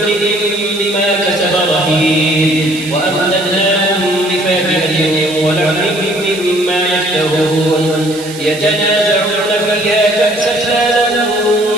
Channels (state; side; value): noise; right; hiss, 15 dB below the sound